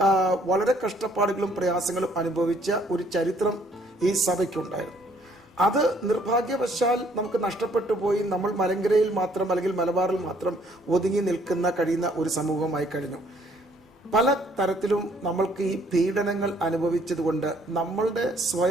വളരെ കഷ്ടപ്പാടുകളും പ്രയാസങ്ങളും അനുഭവിച്ച ഒരു ചരിത്രം ഈ സഭയ്ക്കുണ്ടായിരുന്നു. അത് നിർഭാഗ്യവശാൽ നമുക്ക് നഷ്ടപ്പെട്ടു പോയി. നമ്മൾ മലങ്കരയിൽ മാത്രം അല്ലെങ്കിൽ മലബാറിൽ മാത്രം ഒതുങ്ങി കഴിയുന്ന ഒരു സമൂഹമായി കഴിഞ്ഞു. പല തരത്തിലും നമ്മൾക്ക് ഈ പീഡനങ്ങൾ അനുഭവിച്ചതുകൊണ്ട് നമ്മളുടെ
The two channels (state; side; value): normal; both; correlation 0.64